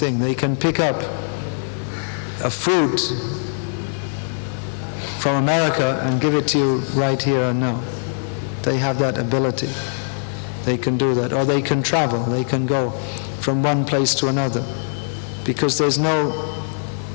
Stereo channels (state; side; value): silent; right; 65 dB below the other